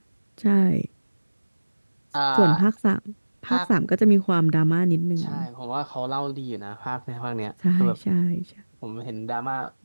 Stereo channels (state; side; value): inverted; both; correlation -1.00